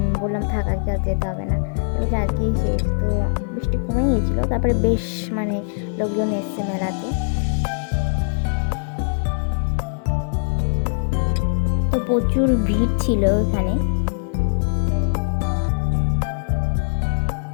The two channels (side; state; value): right; silent; digital silence